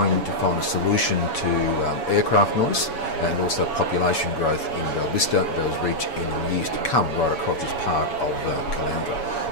to find a solution to aircraft noise and also population growth in Bellvista, Bells Reach in the years to come right across this part of Caloundra.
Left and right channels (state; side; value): late; right; 7.1 ms